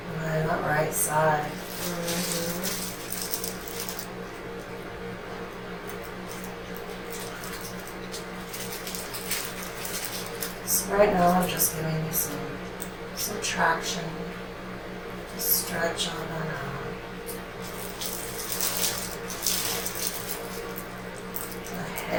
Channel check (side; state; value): both; identical; correlation 1.00